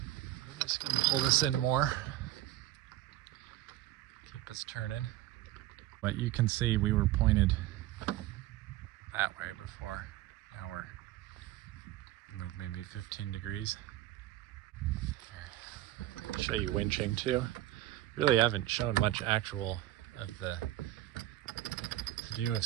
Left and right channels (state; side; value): quieter; left; 15.0 dB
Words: just gonna pull this in more. Keep us turning. But you can see we were pointed that way before. Now we're moved maybe 15 degrees. Here. Show you winching too. Really haven't shown much actual of the view of